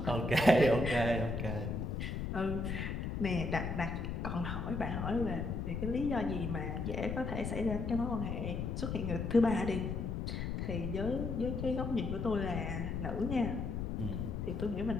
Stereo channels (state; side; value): noise; left; rumble, 2 dB below the sound